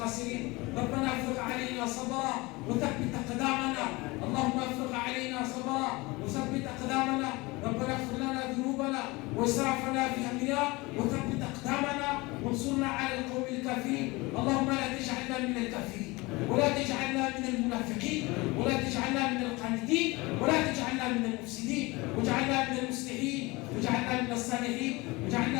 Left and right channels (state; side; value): quieter; right; 23.3 dB